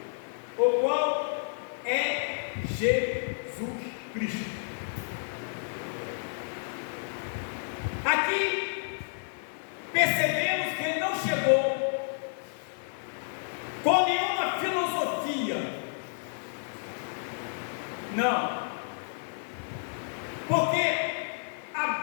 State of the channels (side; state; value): right; silent; digital silence